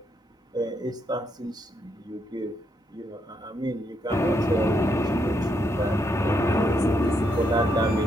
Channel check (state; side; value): normal; both; correlation 0.77